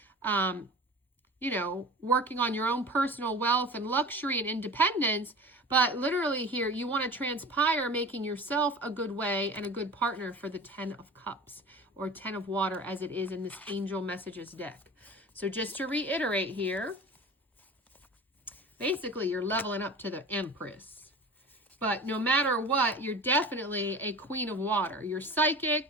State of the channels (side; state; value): both; normal; correlation 0.36